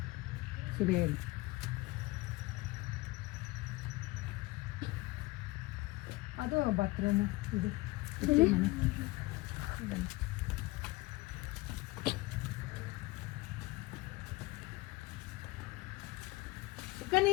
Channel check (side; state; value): right; quieter; 21.0 dB